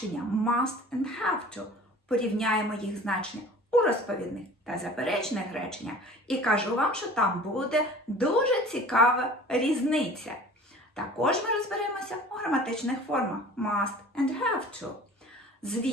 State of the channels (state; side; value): normal; both; correlation 0.44